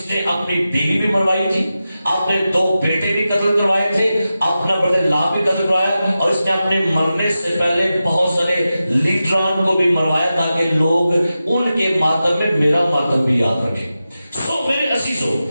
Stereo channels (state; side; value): inverted; both; correlation -0.92